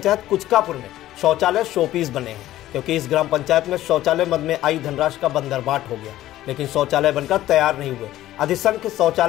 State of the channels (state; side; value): quieter; right; 14.4 dB